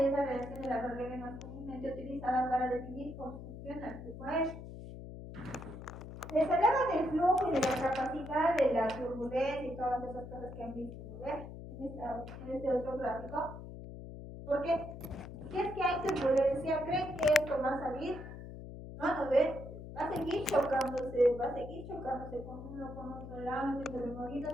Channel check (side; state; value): left; noise; hum, 11 dB below the sound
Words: la relación de la regla más comúnmente utilizada para definir cómo funciona el flujo aéreo. Les hablaba del flujo y de la capacidad de la turbulencia y todas esas cosas que han visto, ¿no ven? En este otro gráfico. Porque si es que hay turbulencia, ¿creen que esto va a salir? No ven. Va a seguir chocándose con uno, con otro lado, entre